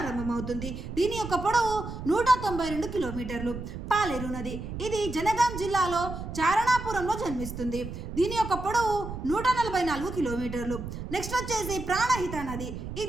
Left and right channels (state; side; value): noise; right; rumble, 8 dB below the sound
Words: దీని యొక్క పొడవు 192 కిలోమీటర్లు. పాలేరు నది ఇది జనగాం జిల్లాలో చారణాపురంలో జన్మిస్తుంది. దీని యొక్క పొడవు 144 కిలోమీటర్లు. నెక్స్ట్ వచ్చేసి ప్రాణహిత నది